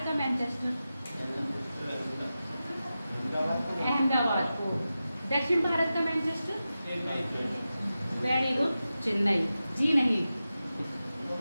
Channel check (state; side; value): inverted; both; correlation -0.93